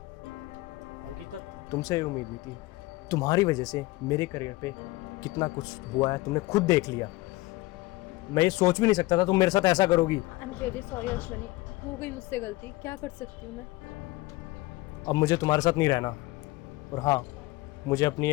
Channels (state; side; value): quieter; right; 20.5 dB